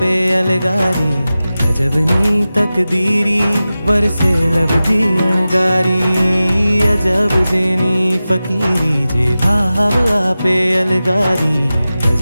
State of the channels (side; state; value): both; inverted; correlation -0.95